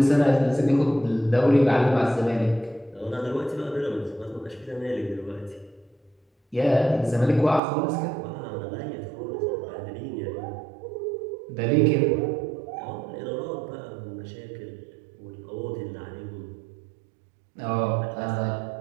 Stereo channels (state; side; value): drops out; left; at 7.6 s